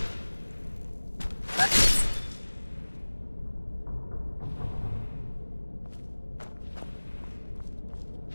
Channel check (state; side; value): inverted; both; correlation -1.00